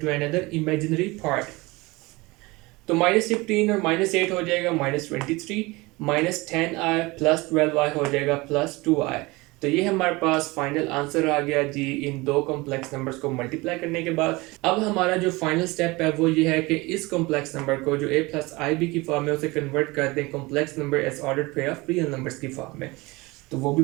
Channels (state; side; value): quieter; left; 23.0 dB